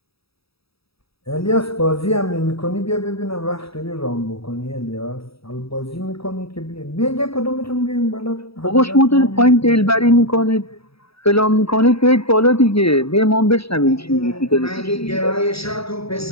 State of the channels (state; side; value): late; right; 0.77 ms